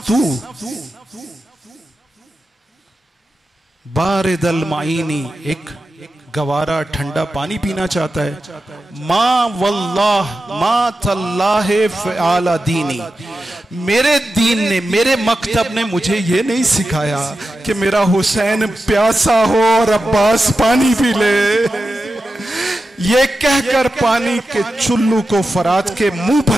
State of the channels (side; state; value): both; normal; correlation 0.91